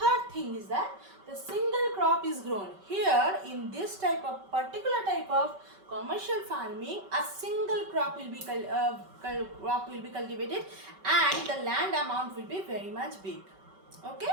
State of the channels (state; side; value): late; left; 5.2 ms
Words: thing is that the single crop is grown. Here in this particular type of commercial farming, a single crop will be cultivated and the land amount will be very much big. Okay,